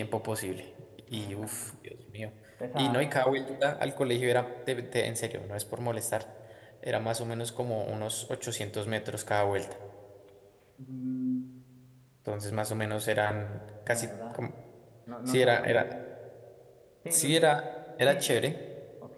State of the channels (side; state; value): both; identical; correlation 1.00